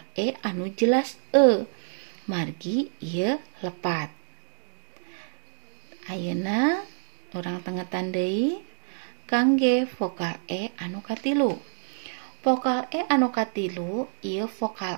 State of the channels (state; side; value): silent; left; digital silence